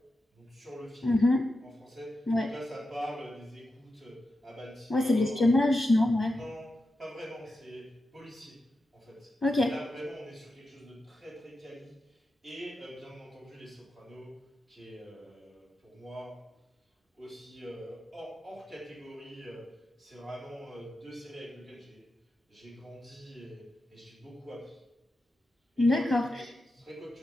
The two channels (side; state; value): both; normal; correlation 0.89